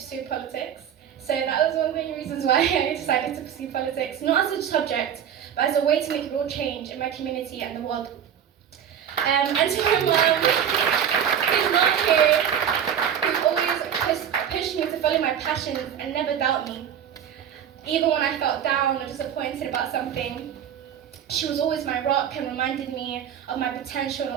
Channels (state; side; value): quieter; left; 8.9 dB